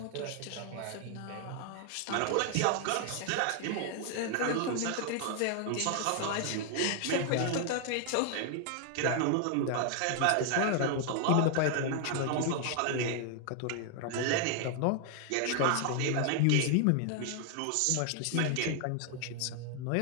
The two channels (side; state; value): both; different; correlation 0.00